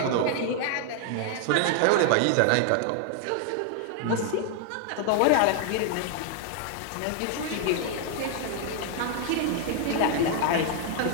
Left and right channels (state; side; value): different; both; correlation 0.00